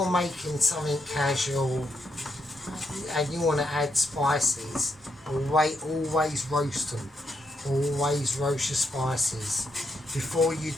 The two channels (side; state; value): both; normal; correlation 0.80